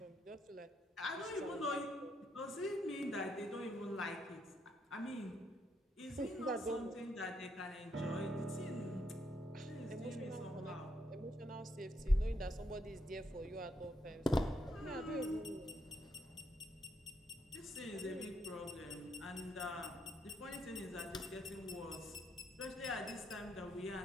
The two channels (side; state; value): both; normal; correlation 0.76